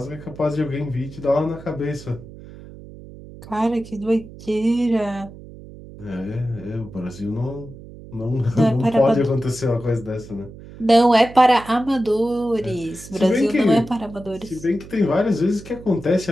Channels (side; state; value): right; noise; hum, 17 dB below the sound